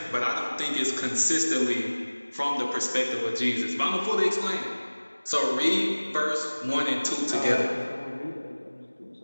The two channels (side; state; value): both; inverted; correlation -1.00